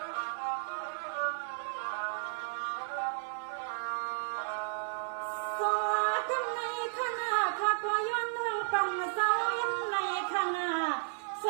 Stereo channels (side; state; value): left; silent; digital silence